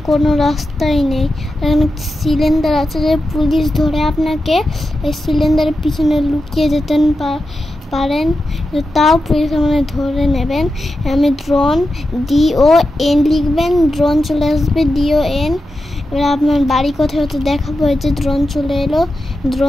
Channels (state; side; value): normal; both; correlation 0.90